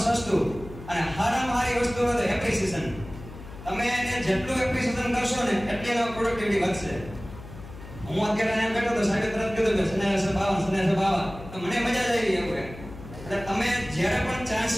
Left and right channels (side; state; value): left; noise; hum, 15 dB below the sound